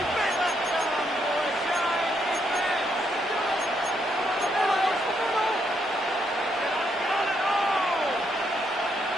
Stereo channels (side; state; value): both; normal; correlation 0.76